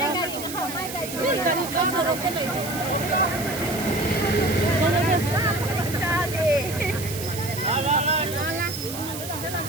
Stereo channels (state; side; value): noise; right; hiss, 9 dB below the sound